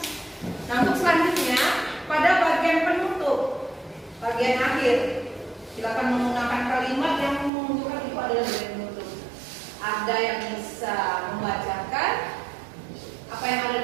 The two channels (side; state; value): left; drops out; at 7.5 s